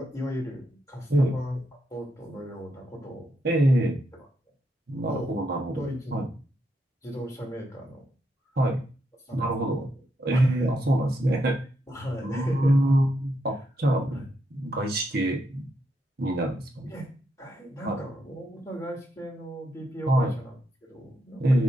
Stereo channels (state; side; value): normal; both; correlation 0.80